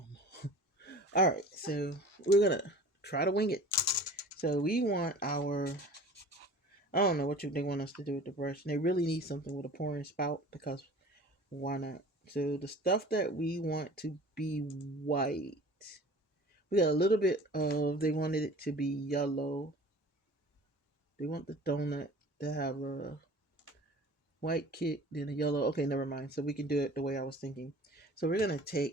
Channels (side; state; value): both; normal; correlation 0.43